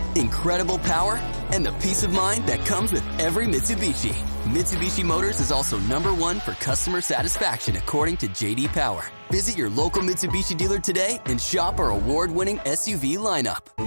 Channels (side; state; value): both; inverted; correlation -1.00